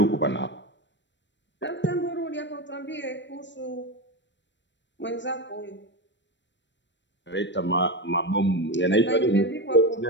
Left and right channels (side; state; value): right; late; 0.53 ms